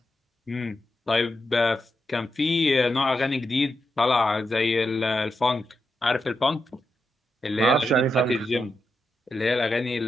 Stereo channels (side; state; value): both; normal; correlation 0.86